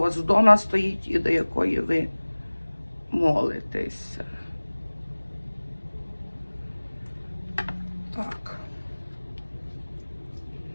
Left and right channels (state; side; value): inverted; both; correlation -1.00